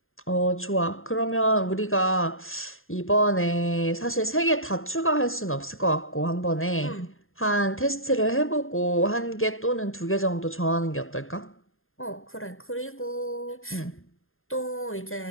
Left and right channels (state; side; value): late; right; 0.60 ms